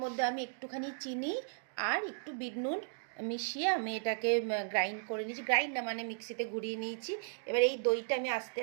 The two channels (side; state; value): left; silent; digital silence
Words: মধ্যে আমি একটুখানি চিনি আর একটু বিট নুন মিশিয়ে আমি এটাকে গ্রাইন্ড করে নিয়েছি, গ্রাইন্ড না মানে মিক্সিতে ঘুরিয়ে নিয়েছি। এবার এই দইটা আমি আস্তে